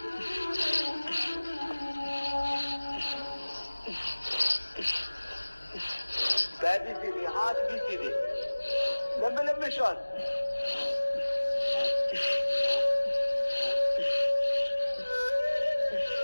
पैर भी सीधे, हाथ भी सीधे, लंबे लंबे श्वास।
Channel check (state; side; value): inverted; both; correlation -1.00